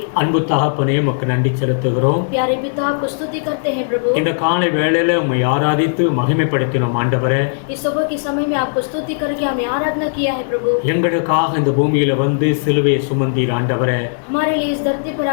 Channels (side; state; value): right; silent; digital silence